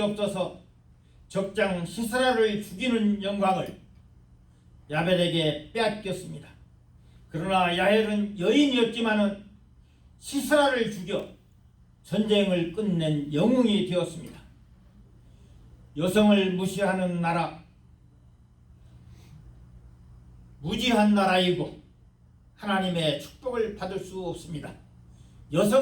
적장 시스라를 죽이는 영광을 야벨에게 빼앗겼습니다. 그러나 야헬은 여인이었지만은 시스라를 죽여 전쟁을 끝낸 영웅이 되었습니다. 여성을 무시하는 나라, 무지한 나라이고 하나님의 축복을 받을 수 없습니다.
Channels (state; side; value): identical; both; correlation 1.00